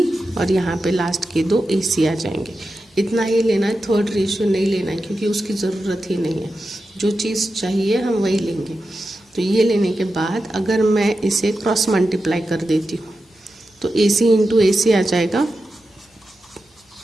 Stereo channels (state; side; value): normal; both; correlation 0.91